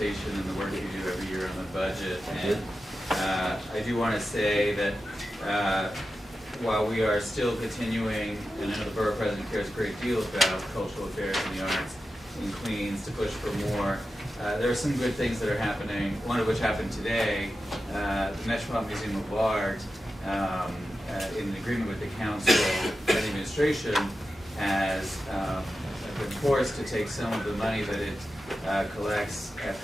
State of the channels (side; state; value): both; normal; correlation 0.92